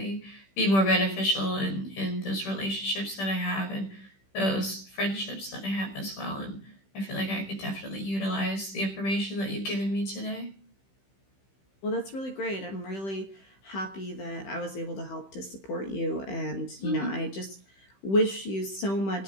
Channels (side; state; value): right; late; 15 ms